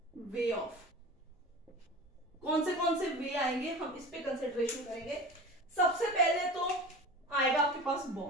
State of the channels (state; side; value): normal; both; correlation 0.34